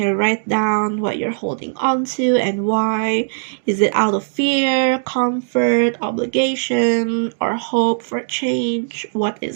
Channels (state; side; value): silent; left; digital silence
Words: write down what you're holding on to and why. Is it out of fear, comfort, obligation, or hope for change? What